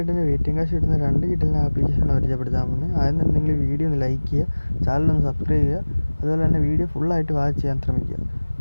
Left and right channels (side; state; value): both; inverted; correlation -1.00